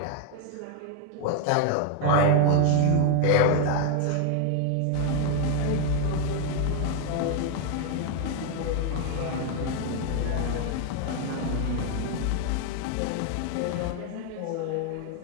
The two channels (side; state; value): both; different; correlation 0.01